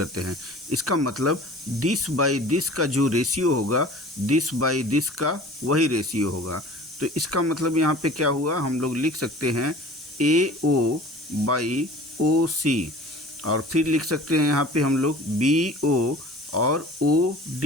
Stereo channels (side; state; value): both; normal; correlation 0.44